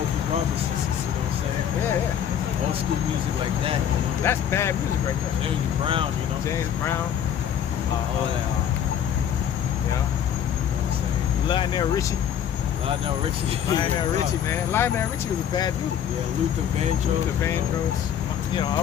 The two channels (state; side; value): quieter; right; 9.2 dB